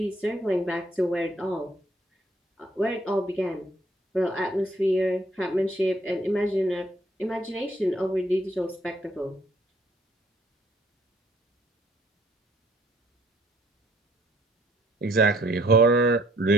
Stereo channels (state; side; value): normal; both; correlation 0.63